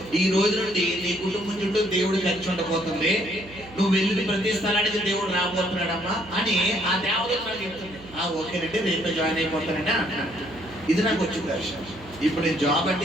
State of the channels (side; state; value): right; noise; hum, 19 dB below the sound